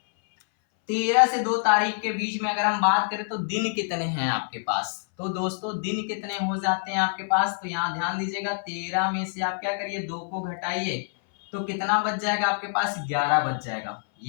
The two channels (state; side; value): silent; right; 59 dB below the other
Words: 13 से 2 तारीख के बीच में अगर हम बात करें तो दिन कितने हैं आपके पास। तो दोस्तों दिन कितने हो जाते हैं आपके पास, तो यहाँ ध्यान दीजिएगा 13 में से आप क्या करिए, 2 को घटाइए, तो कितना बच जाएगा आपके पास, 11 बच जाएगा।